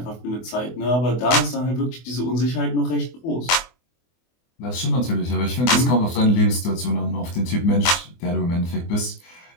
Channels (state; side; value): late; right; 24 ms